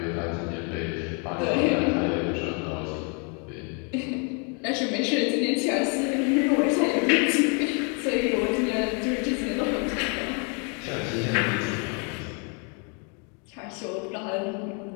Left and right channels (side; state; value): right; quieter; 36.9 dB